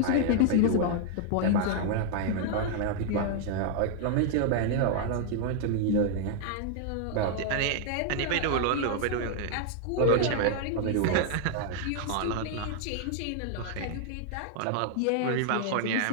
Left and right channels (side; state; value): both; different; correlation 0.00